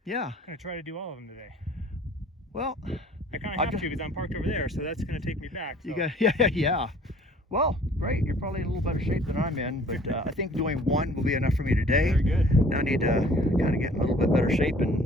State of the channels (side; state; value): both; normal; correlation 0.53